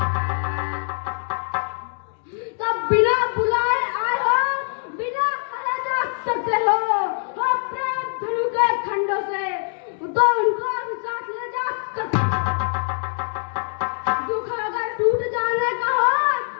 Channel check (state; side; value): silent; right; digital silence